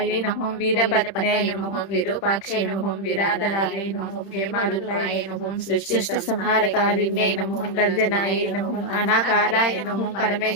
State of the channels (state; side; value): late; right; 31 ms